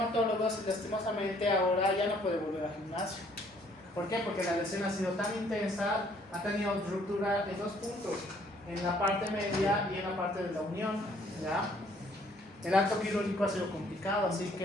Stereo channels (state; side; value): normal; both; correlation 0.63